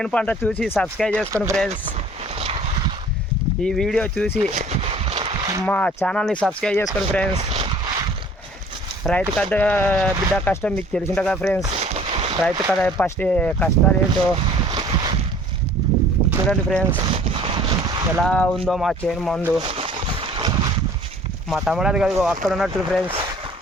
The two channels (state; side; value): normal; both; correlation 0.51